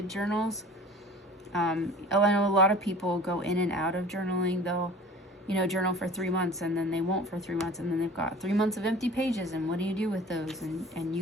journals. I know a lot of people go in and out of journaling. They'll, journal for 3 months and then they won't for 3 months, and then they've got 3 months of empty pages, and what do you do with those? And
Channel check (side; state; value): both; normal; correlation 0.43